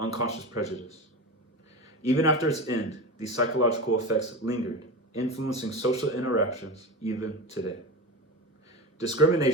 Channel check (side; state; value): both; normal; correlation 0.25